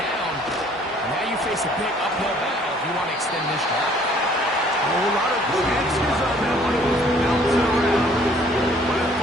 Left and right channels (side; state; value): both; normal; correlation 0.58